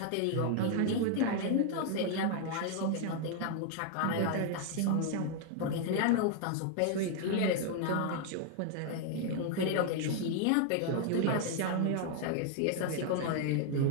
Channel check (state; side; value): different; both; correlation 0.00